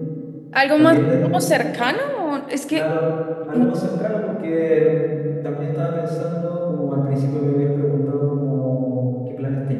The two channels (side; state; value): both; identical; correlation 1.00